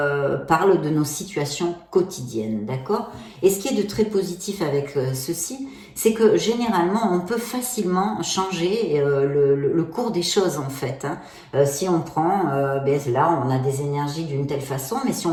parlent de nos situations quotidiennes, d'accord? Et ce qui est de très positif avec ceci, c'est que généralement, on peut facilement changer le cours des choses, en fait. Hein. Si on prend, là, on a des énergies d'une telle façon, mais si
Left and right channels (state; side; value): identical; both; correlation 1.00